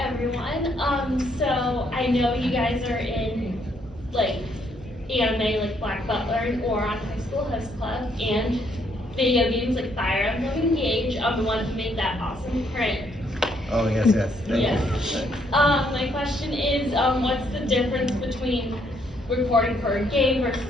everyone. So I know you guys are in like anime like Black Butler and Oron High School Host Club and video games like Fire Emblem Engage, the one who made that awesome print. Oh yes. Thank Yes. you. My question is, what's the difference between recording for a game versus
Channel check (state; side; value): normal; both; correlation 0.71